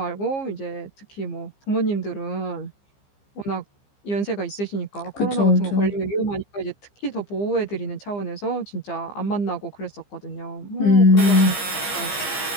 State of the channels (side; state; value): right; late; 15 ms